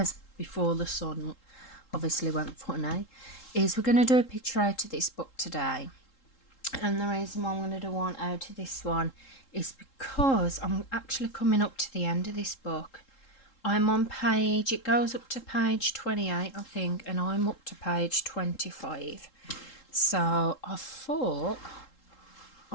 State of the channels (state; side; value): late; right; 3.7 ms